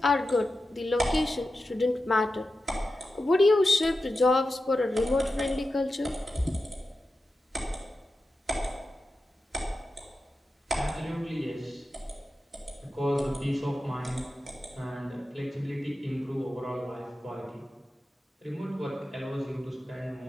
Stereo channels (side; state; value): both; normal; correlation 0.92